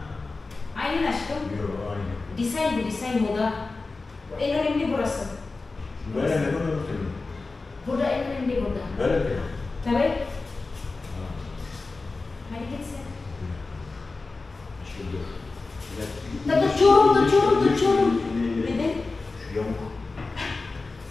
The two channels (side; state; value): right; quieter; 3.7 dB